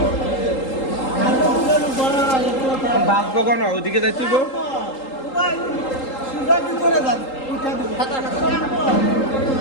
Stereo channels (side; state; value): right; late; 3.8 ms